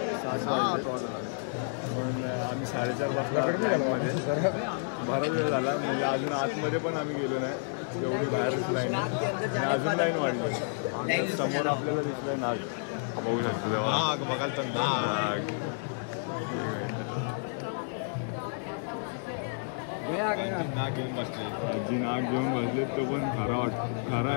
वाजले पण आम्ही 4:30 वाजता लाईनमध्ये बराच वेळ झाला म्हणजे अजून आतमध्ये पण आम्ही गेलो नाही एवढी बाहेरच लाईन आहे आणि अजून लाईन वाढली समोर आपल्याला दिसलं नाग बघू शकतो नाग बघाल तर नाग नाग घेऊन बसले आजी नाग घेऊन बसले तो पण खरा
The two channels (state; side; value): silent; right; 58 dB below the other